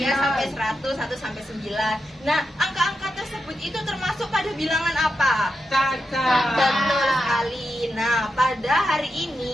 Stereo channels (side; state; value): both; normal; correlation 0.87